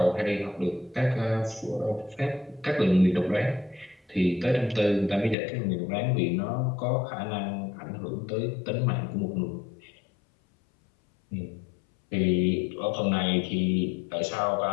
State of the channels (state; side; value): drops out; right; at 5.4 s